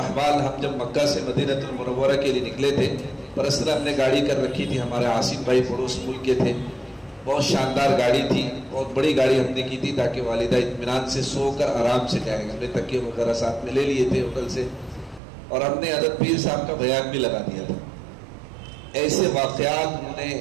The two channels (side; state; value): left; drops out; at 15.2 s